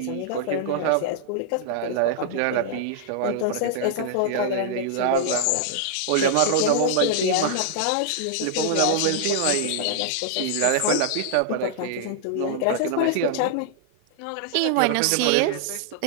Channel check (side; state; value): both; different; correlation -0.01